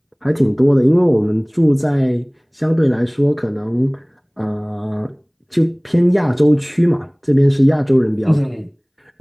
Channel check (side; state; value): both; identical; correlation 1.00